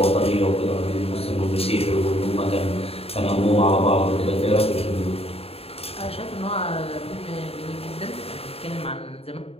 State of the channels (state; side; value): late; right; 0.29 ms